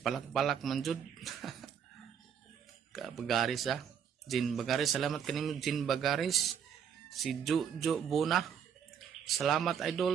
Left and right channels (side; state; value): left; quieter; 8.0 dB